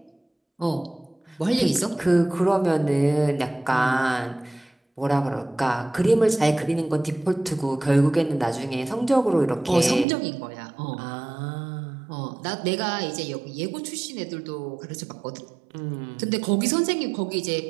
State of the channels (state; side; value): drops out; left; at 10.1 s